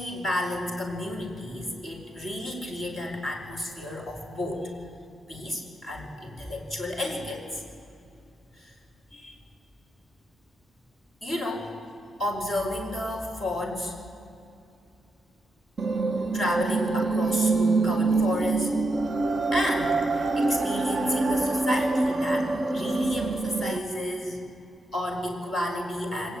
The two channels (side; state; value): both; normal; correlation 0.83